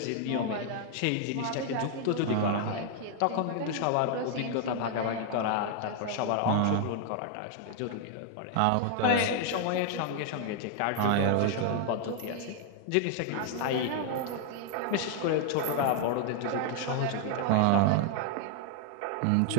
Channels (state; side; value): different; both; correlation 0.00